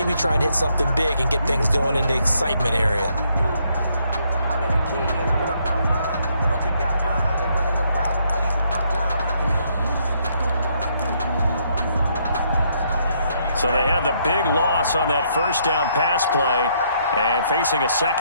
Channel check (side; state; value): both; inverted; correlation -0.72